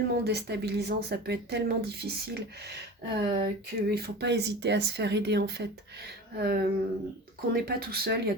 déstabilisant, ça peut être tellement difficile qu'il ne faut pas hésiter à se faire aider, en fait. Qu'on n'est pas tout seul, il y a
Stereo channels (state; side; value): normal; both; correlation 0.34